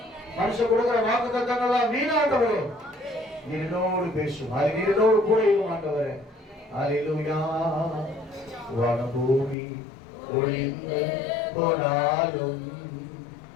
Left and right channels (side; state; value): right; drops out; at 9.6 s